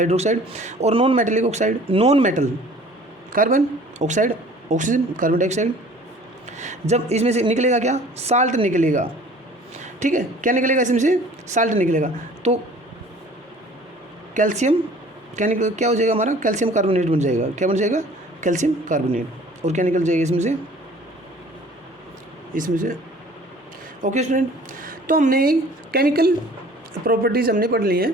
और non metallic oxide, non metal carbon oxide, oxygen, carbon dioxide, जब इसमें से निकलेगा क्या, साल्ट निकलेगा। ठीक है, क्या निकलेगा, इसमें से साल्ट निकलेगा तो कैल्शियम क्या हो जाएगा, हमारा कैल्शियम कार्बोनेट बन जाएगा। क्या बन जाएगा, कैल्शियम कार्बोनेट, और क्या निकल जाएगा इसमें से। ओके स्टूडेंट, तो हमने केमिकल प्रॉपर्टीज़ हमने पढ़ ली हैं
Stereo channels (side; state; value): both; normal; correlation 0.50